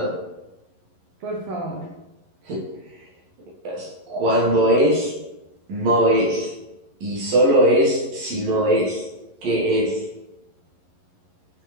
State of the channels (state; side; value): late; left; 11 ms